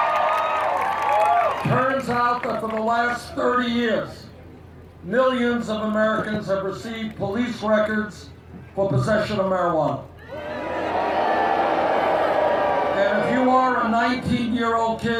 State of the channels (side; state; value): both; identical; correlation 1.00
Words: Turns out that for the last 30 years, millions of Americans have received police records for possession of marijuana. And if you are a 19-year-old